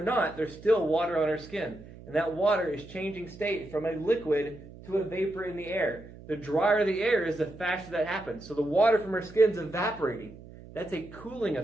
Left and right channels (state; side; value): noise; right; hum, 18 dB below the sound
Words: not, there's still water on our skin. And that water is changing state from a liquid to a vapor in the air. The drier the air is, the faster that happens. So the water from our skin is evaporating. That's a cooling